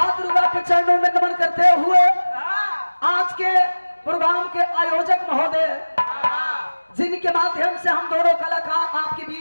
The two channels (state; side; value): inverted; both; correlation -1.00